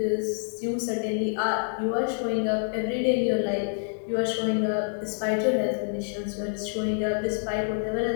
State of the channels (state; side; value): silent; right; digital silence